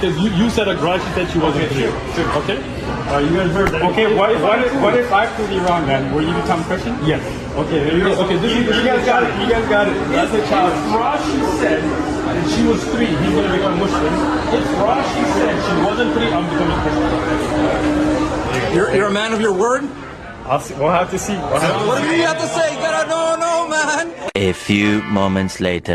you said that Rashi said she wasn't 3. Sure. Okay? You guys heard that. Okay, what if I prove you wrong then? Will you become Christian? Yes. Okay, there you go. Okay, you guys got it. You guys got it. That's a challenge. If Rashi said that she was 3, he's going to become Muslim. If Rashi said she wasn't 3, I'm becoming Christian. You're a man of your word? We'll have to see. What do you have to say? You gotta know, man. A few moments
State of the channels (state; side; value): identical; both; correlation 1.00